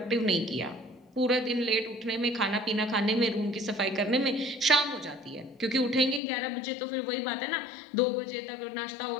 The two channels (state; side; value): drops out; right; at 6.2 s